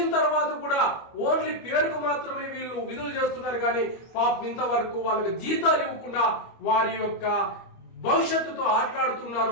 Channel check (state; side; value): late; right; 25 ms